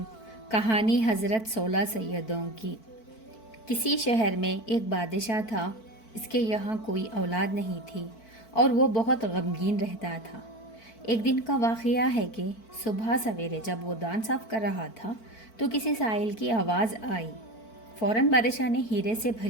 کہانی حضرت 16 سیدوں کی۔ کسی شہر میں ایک بادشاہ تھا۔ اس کے یہاں کوئی اولاد نہیں تھی اور وہ بہت غمگین رہتا تھا۔ ایک دن کا واقعہ ہے کہ صبح سویرے جب وہ دان صاف کر رہا تھا تو کسی سائل کی آواز آئی۔ فوراً بادشاہ نے ہیرے سے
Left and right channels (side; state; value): right; late; 4.5 ms